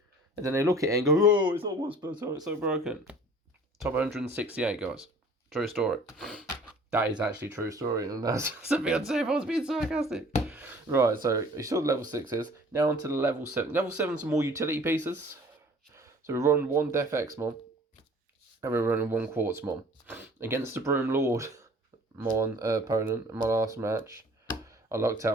And then they look at it and go, oh, it's not once per turn, it's so broken. Top 168, guys. True story. That is actually a true story, and that's something I'd say if I was being sarcastic. Right, so you saw the level 6s. Now onto the level 7. Level 7's more utility pieces. So we run 1 Def X Mon, and we're running 1 Quartz Mon. Against the Broom Lord Mon opponent in my last match, I lucked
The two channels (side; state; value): both; normal; correlation 0.49